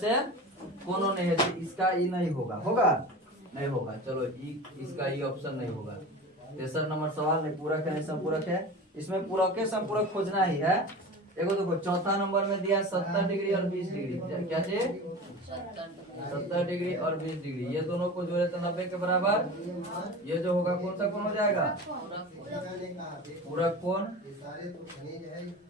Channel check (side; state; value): both; normal; correlation 0.33